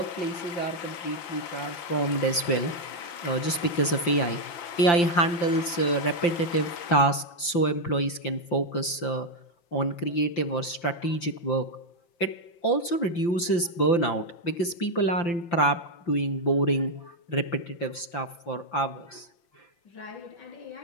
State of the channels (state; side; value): late; right; 5.8 ms